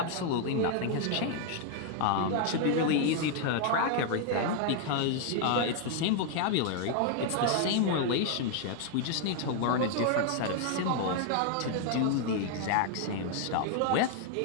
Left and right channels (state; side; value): different; both; correlation 0.00